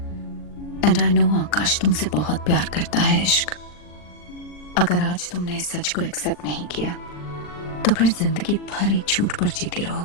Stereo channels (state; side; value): late; right; 40 ms